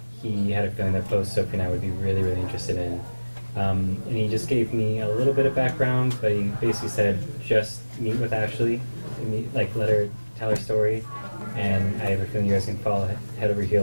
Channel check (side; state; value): both; inverted; correlation -1.00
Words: he had a feeling that both Sophie and I would be really, really interested in. And he just gave me a little bit of background, but he basically said, just meet with Ashley, let her tell her story, and I have a feeling you guys can fall head over